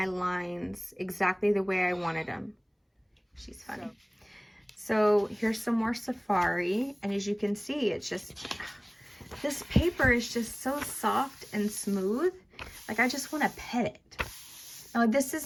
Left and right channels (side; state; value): both; identical; correlation 1.00